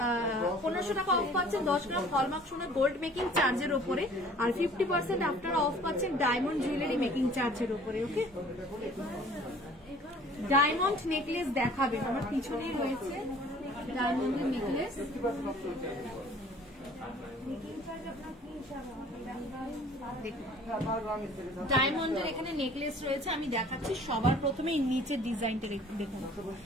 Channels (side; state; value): both; normal; correlation 0.51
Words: 1500 টাকা অফ পাচ্ছেন 10 গ্রাম হলমার্ক সোনার গোল্ড মেকিং চার্জের উপরে, আর 50% আপনারা অফ পাচ্ছেন ডায়মন্ড জুয়েলারি মেকিং চার্জের উপরে। ওকে, ডায়মন্ড নেকলেস দেখাবেন, আমার পিছনেই রয়েছে ডায়মন্ডের নেকলেস। ডায়মন্ডের এখানে নেকলেস রয়েছে, আমি দেখাচ্ছি। সবার প্রথমে নিচের ডিজাইনটা দেখুন।